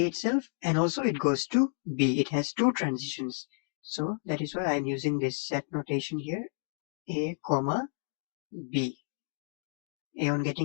itself, and also it goes to B. It has two transitions. So that is why I'm using this set notation here, A, comma, B. A on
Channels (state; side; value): silent; right; digital silence